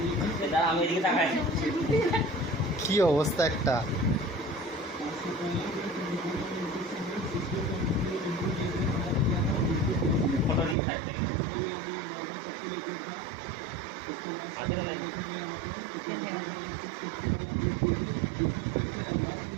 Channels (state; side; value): drops out; left; at 10.8 s